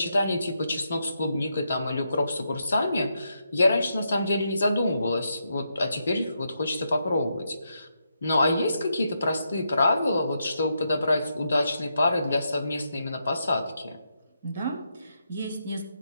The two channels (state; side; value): inverted; both; correlation -0.82